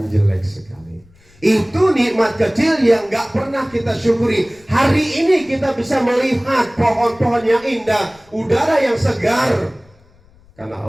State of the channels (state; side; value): noise; left; rumble, 30 dB below the sound